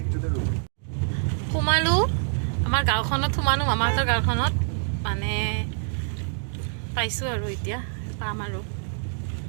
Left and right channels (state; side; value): silent; left; digital silence